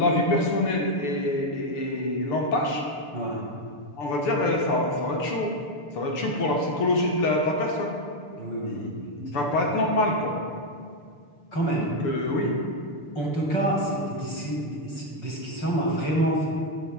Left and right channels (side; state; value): right; late; 6.8 ms